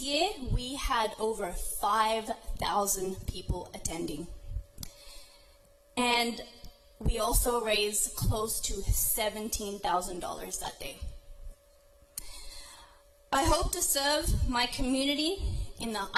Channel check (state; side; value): identical; both; correlation 1.00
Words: we had over 5,000 people attending. And we also raised close to $17,000 that day. I hope to serve my community in the